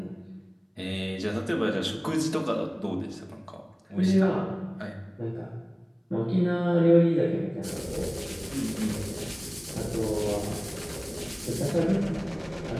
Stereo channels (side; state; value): both; identical; correlation 1.00